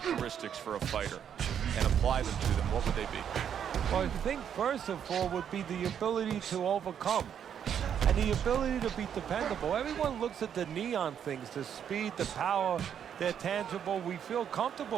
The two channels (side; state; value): left; quieter; 8.6 dB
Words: for a fighter and apply them to them, what would they be? Well, I think first of all would be the ability to overcome and the ability to be dependable. Everyone looks at the neon things, the speed, the power, they're tangible. We feel